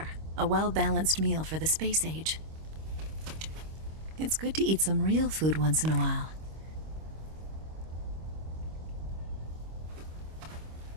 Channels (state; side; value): late; left; 25 ms